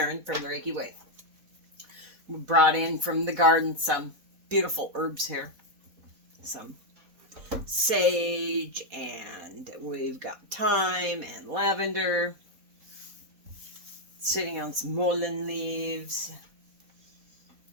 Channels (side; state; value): left; late; 3.9 ms